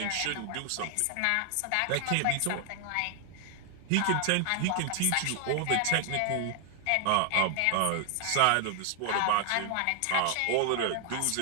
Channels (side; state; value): both; different; correlation 0.00